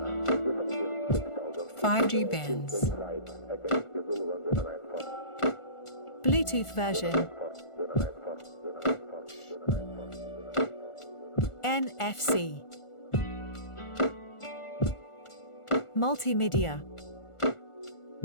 5G bands. Bluetooth version. NFC. Multimedia.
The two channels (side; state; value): right; late; 1.4 ms